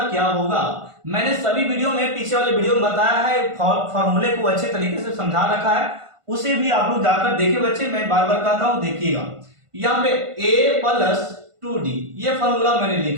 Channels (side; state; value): left; late; 1.5 ms